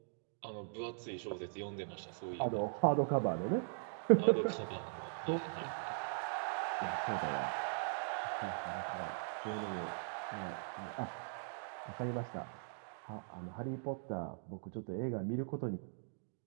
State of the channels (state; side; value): silent; left; digital silence